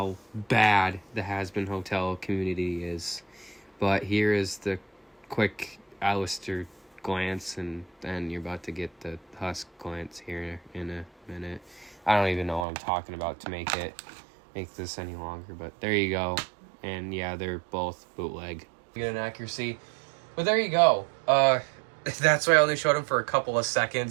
bad the Has-Been Hotel community is. But here is the quick Alistair glance, and then you're about to get the Husk glance here in a minute. I don't even know what I'm talking about to make this any longer, but there you go. And yeah, they're both bootleg. Get an accuracy. But there you go. That's why I only showed him for a couple of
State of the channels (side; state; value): left; drops out; at 12.7 s